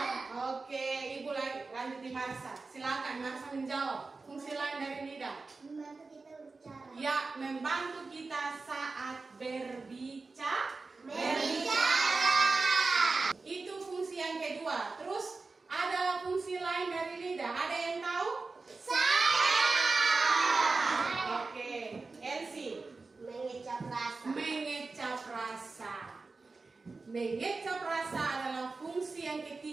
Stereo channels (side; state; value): left; quieter; 3.9 dB